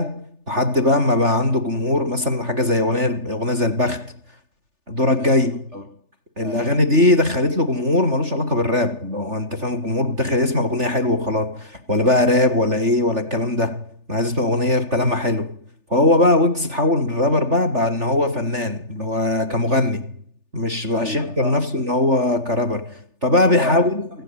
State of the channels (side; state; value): left; late; 3.4 ms